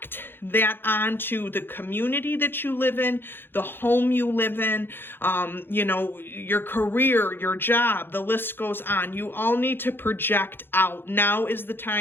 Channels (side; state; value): right; late; 0.10 ms